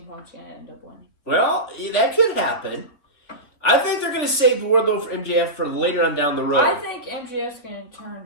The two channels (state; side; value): late; right; 3.5 ms